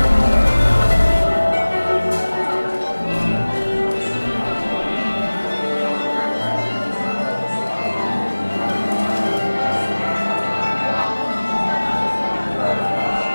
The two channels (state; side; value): inverted; both; correlation -1.00